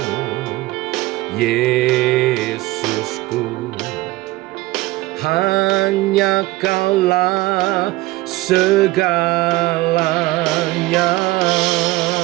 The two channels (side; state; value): left; quieter; 19.2 dB